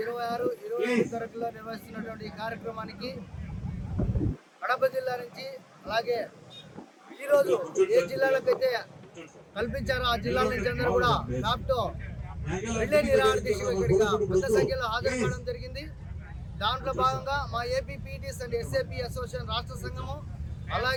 27 తరగతిలో నిర్వహిస్తున్నటువంటి ఈ కార్యక్రమానికి కడప జిల్లా నుంచి అలాగే ఈరోజు ఏ జిల్లాలకైతే కల్పించారో ఆ జిల్లాల నుంచి అందరూ కూడా డాక్టర్ రిలే నిరాహార దీక్షలో ఇక్కడిగా పెద్ద సంఖ్యలో హాజరు కావడం జరిగింది. దాంట్లో భాగంగా మా AP PTS and SAP association రాష్ట్ర సంఘము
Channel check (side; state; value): both; identical; correlation 1.00